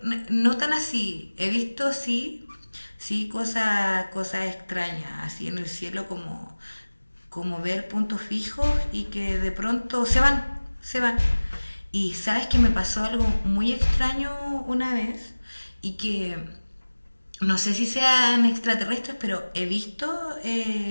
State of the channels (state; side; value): inverted; both; correlation -1.00